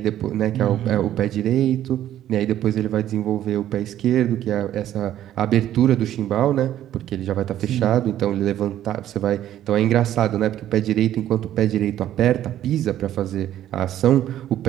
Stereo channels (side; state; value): left; quieter; 12.0 dB